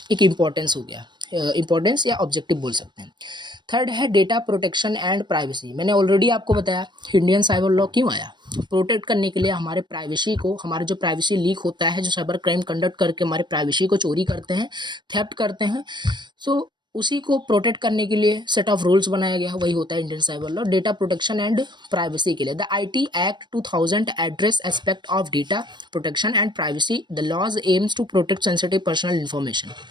एक इम्पोर्टेंस हो गया, इम्पोर्टेंस या ऑब्जेक्टिव बोल सकते हैं। थर्ड है डेटा प्रोटेक्शन एंड प्राइवेसी। मैंने ऑलरेडी आपको बताया इंडियन साइबर लॉ क्यों आया, प्रोटेक्ट करने के लिए हमारे प्राइवेसी को, हमारा जो प्राइवेसी लीक होता है, जो साइबर क्राइम कंडक्ट करके हमारे प्राइवेसी को चोरी करते हैं, थेफ्ट करते हैं, सो उसी को प्रोटेक्ट करने के लिए सेट ऑफ रूल्स बनाया गया, वही होता है Indian cyber law, data protection and privacy के लिए। The IT act 2000 address aspect of data protection and privacy. The laws aims to protect sensitive personal information.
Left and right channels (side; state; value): left; late; 0.22 ms